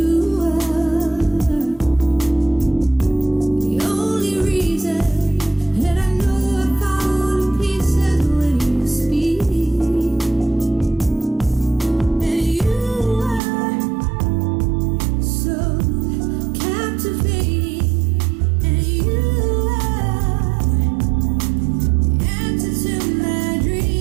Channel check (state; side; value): drops out; left; at 13.4 s